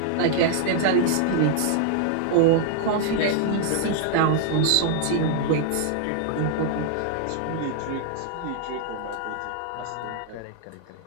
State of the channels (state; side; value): different; both; correlation -0.01